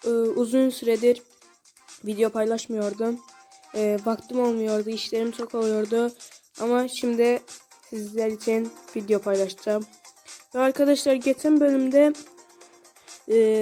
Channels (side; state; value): both; identical; correlation 1.00